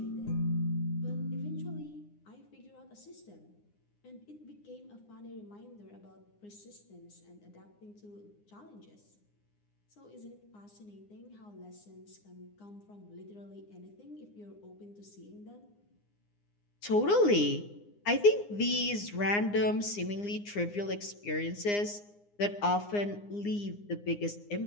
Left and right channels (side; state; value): right; late; 9.7 ms